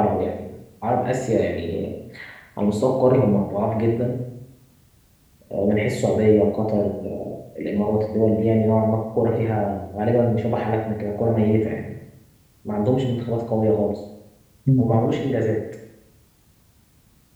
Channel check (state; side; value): identical; both; correlation 1.00